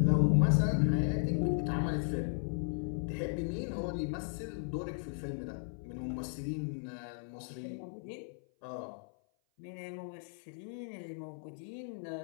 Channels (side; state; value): right; silent; 54 dB below the other